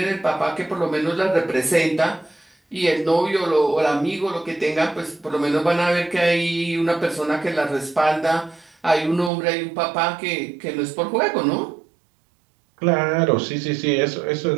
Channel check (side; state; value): left; drops out; at 9.3 s